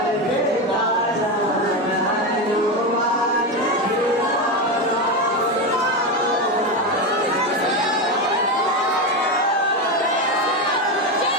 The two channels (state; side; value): normal; both; correlation 0.14